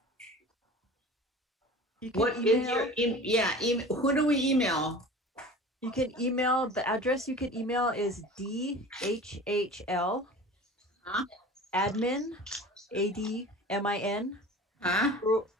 You can What is email. your who do we email? You can email, the address you can email is DHHL Huh? admin, ADMIN, Huh?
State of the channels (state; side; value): normal; both; correlation 0.39